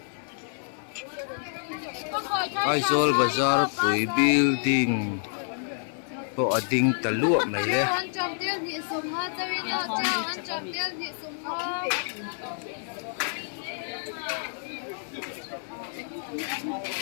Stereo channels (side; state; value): right; silent; 59 dB below the other